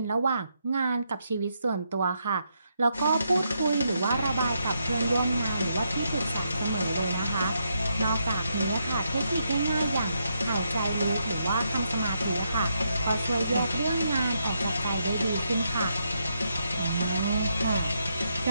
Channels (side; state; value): both; inverted; correlation -0.79